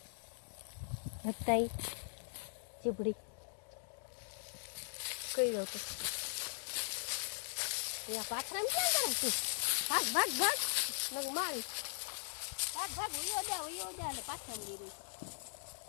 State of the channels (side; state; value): right; silent; digital silence